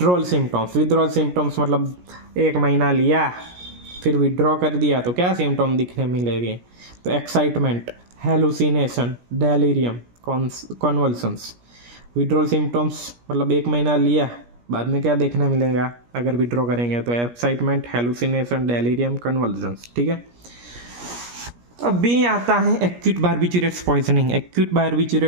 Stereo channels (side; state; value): left; late; 17 ms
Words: सिम्टम्स मतलब 1 महीना लिया फिर विड्रॉ कर दिया तो क्या सिम्टम दिखने मिलेंगे? तो excitement, hallucination, delirium, convulsions. Withdrawal symptoms मतलब 1 महीना लिया, बाद में क्या देखने मिलेगा अगर विड्रॉ करेंगे? तो एक्साइटमेंट, हेलुसिनेशन, डेलीरियम, कन्वल्सन्स, ठीक है। अभी आता है एक्यूट बारबिचुरेट्स